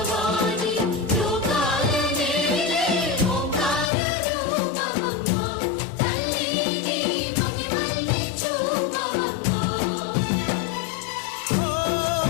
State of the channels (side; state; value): right; drops out; at 3.9 s